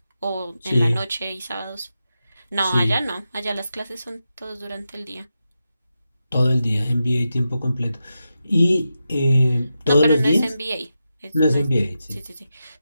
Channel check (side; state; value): both; inverted; correlation -0.89